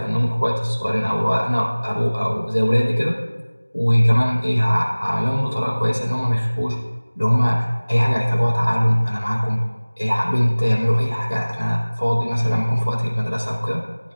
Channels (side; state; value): both; inverted; correlation -1.00